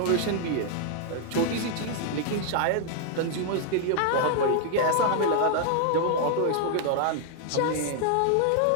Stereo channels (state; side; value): different; both; correlation 0.00